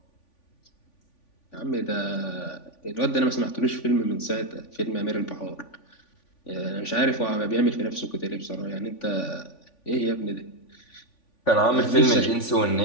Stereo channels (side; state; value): right; late; 3.5 ms